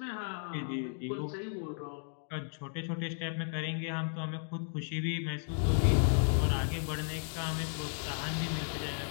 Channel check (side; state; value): right; silent; digital silence